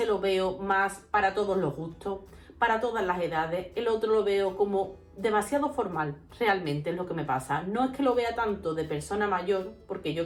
lo veo más para todos los gustos, para todas las edades. El otro lo veo como demasiado formal, realmente es lo que me pasa. No es que lo vea tanto de persona mayor, porque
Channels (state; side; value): identical; both; correlation 1.00